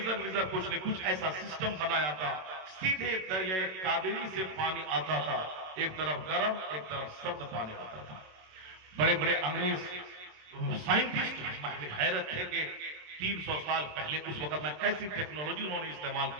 ویزر کچھ نہیں, کچھ ایسا سسٹم بنایا تھا. سیدھے دریائے کاویری سے پانی آتا تھا, ایک طرف گرم ایک طرف سرد پانی آتا تھا. بڑے بڑے انگریز سائنٹسٹ حیرت تھے کہ 300 سال پہلے اس وقت میں کیسی ٹیکنالوجی انہوں نے استعمال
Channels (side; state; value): left; late; 27 ms